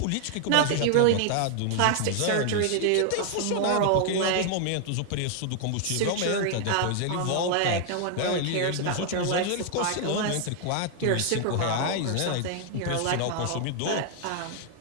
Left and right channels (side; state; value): both; different; correlation 0.00